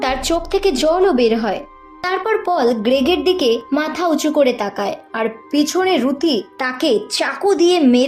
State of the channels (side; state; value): both; identical; correlation 1.00